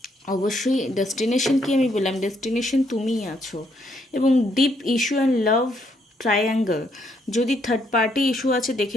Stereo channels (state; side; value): normal; both; correlation 0.73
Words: অবশ্যই ডেস্টিনেশন কি আমি বললাম, ডেস্টিনেশন তুমিই আছো। এবং deep issue and love triangle, যদি থার্ড পার্টি ইস্যু আছে